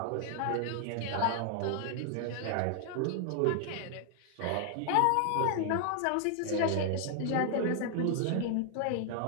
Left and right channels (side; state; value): both; different; correlation 0.00